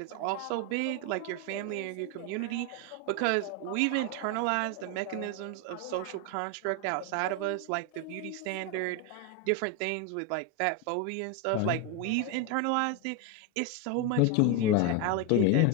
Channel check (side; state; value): both; different; correlation 0.02